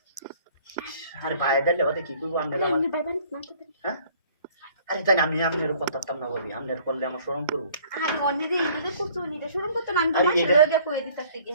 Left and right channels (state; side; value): inverted; both; correlation -0.55